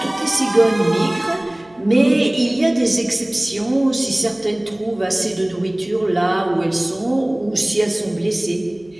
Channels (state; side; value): noise; right; hum, 29 dB below the sound